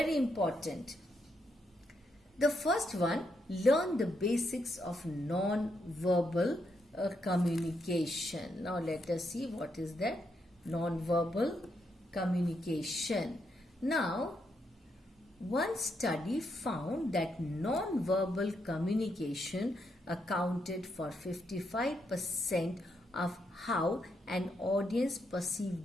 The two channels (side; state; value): both; normal; correlation 0.80